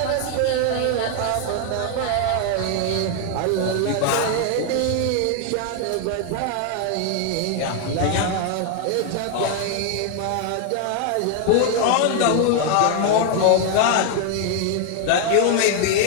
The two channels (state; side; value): different; both; correlation 0.00